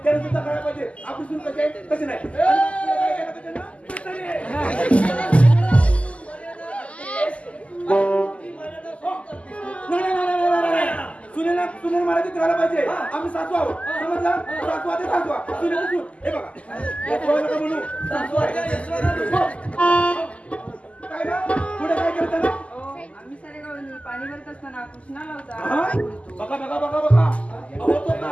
त्याला सुद्धा करायला पाहिजे. आपली सून कशी आहे तशी नाही. सुनेना मराठीत राहायला पाहिजे. आम्ही सासू आहोत, समजलं? सासू आहे सासू, सुनेची सून. हे बघा म्हणू सासू आहे. काय ना पुढे काय करता ना? आम्ही सारे गावांनी पाणी भरत असताना कृष्णाला होता. बघा बघा बघा बघा, अहो तो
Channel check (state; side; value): late; right; 0.062 ms